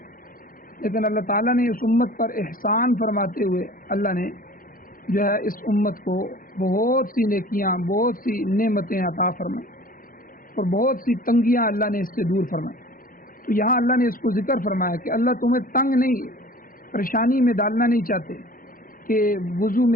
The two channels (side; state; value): right; late; 0.41 ms